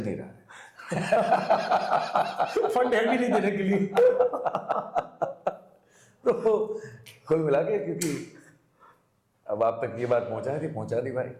नहीं रहा है। फंड है भी नहीं देने के लिए। तो कुल मिला के, क्योंकि अब आप तक ये बात पहुंचा दी भाई,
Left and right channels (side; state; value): both; identical; correlation 1.00